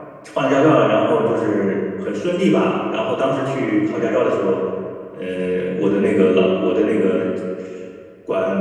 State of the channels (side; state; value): both; identical; correlation 1.00